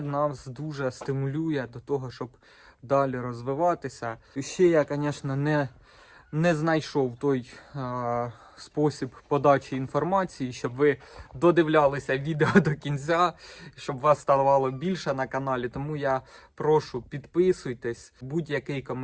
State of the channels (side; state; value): both; identical; correlation 1.00